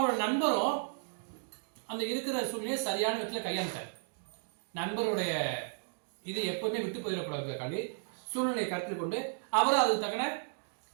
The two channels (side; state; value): left; silent; digital silence